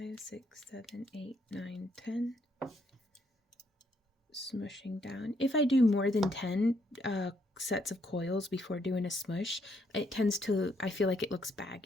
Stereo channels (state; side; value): normal; both; correlation 0.73